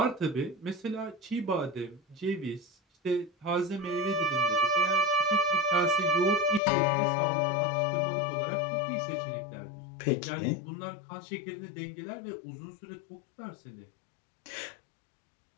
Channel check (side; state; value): right; drops out; at 6.6 s